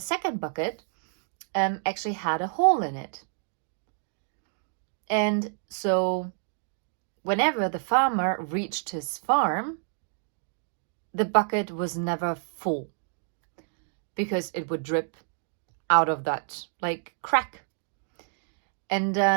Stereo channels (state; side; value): silent; left; digital silence